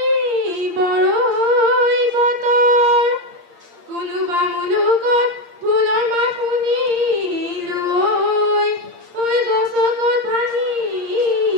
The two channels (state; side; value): late; left; 8.7 ms